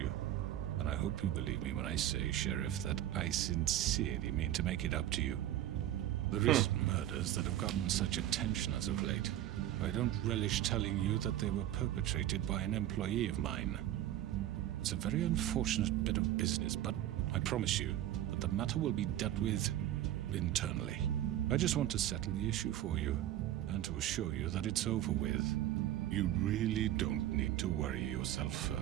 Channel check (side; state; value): left; quieter; 12.8 dB